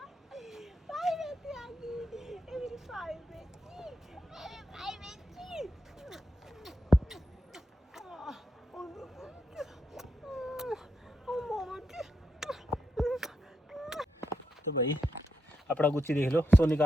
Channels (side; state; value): both; normal; correlation 0.83